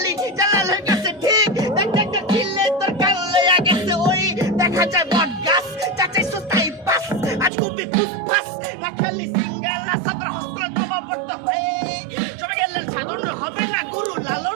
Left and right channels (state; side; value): drops out; left; at 7.5 s